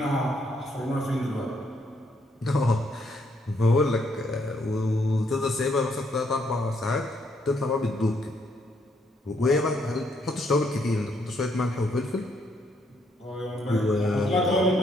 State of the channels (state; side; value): normal; both; correlation 0.72